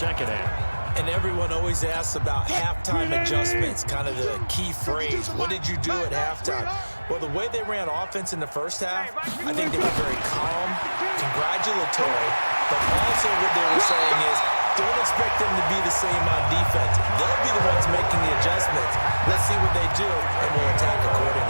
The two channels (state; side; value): inverted; both; correlation -1.00